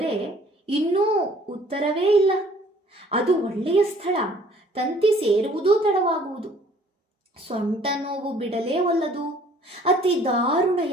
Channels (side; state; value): both; normal; correlation 0.56